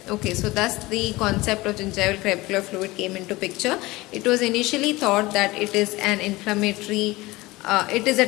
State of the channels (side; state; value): right; quieter; 20.5 dB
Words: Okay, so thus the concept of gingival crevicular fluid came into picture. It was initially thought that it is an inflammatory, it is a